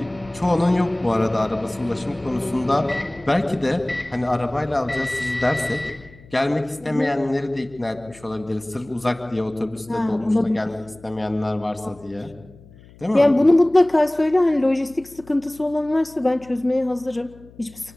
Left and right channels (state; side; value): noise; left; hum, 23 dB below the sound